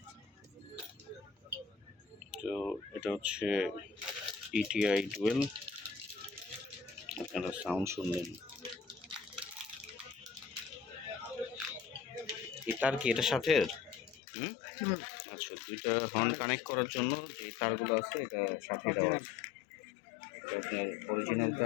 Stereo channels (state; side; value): drops out; right; at 14.2 s